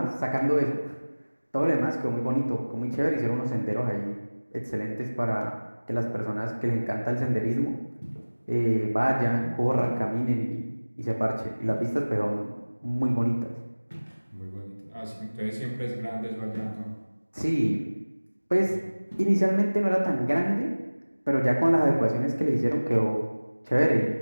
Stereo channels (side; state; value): both; inverted; correlation -1.00